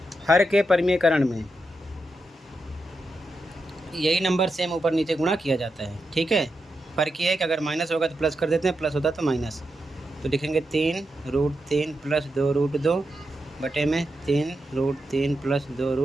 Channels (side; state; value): both; normal; correlation 0.87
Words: हर के परिमेयकरण में यही नंबर सेम ऊपर नीचे गुणा किया जाता है। ठीक है, फर्क ये है कि अगर माइनस होगा तो प्लस कर देते हैं, प्लस होता तो माइनस। तो लिखेंगे 3√3 + 2√2 बटे में 3√3 +